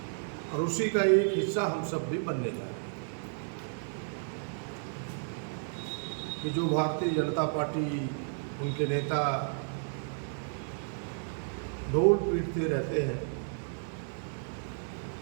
और उसी का एक हिस्सा हम सब भी बनने जा रहे हैं कि जो भारतीय जनता पार्टी, उनके नेता ढोल पीटते रहते हैं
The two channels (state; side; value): silent; left; 56 dB below the other